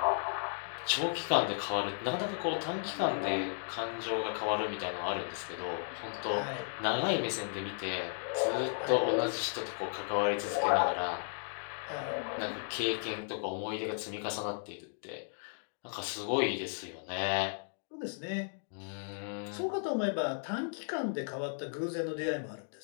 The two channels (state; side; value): silent; right; digital silence